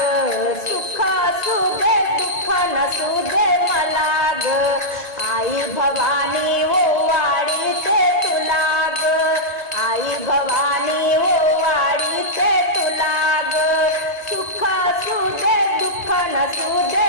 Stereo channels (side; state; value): right; late; 1.8 ms